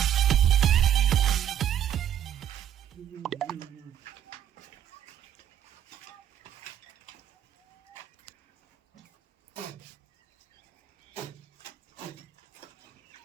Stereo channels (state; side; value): quieter; left; 10.5 dB